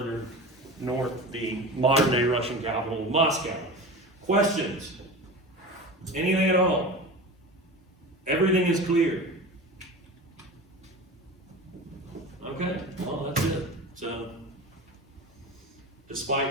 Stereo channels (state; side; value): normal; both; correlation 0.31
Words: north, the modern-day Russian capital, Moscow. Questions? Anything at all? Everything is clear. Okay, well, that's it. So,